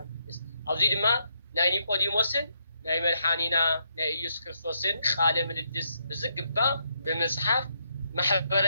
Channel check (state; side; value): inverted; both; correlation -0.77